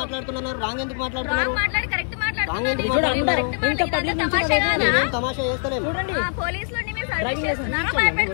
మాట్లాడుతున్నారు రాంగ్ ఎందుకు మాట్లాడుతున్నారు? మాట్లాడి కరెక్ట్ తమాషా చేస్తలేదు. చూడండి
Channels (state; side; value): silent; right; 64 dB below the other